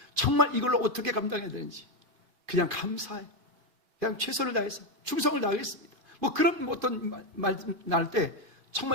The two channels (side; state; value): left; late; 2.4 ms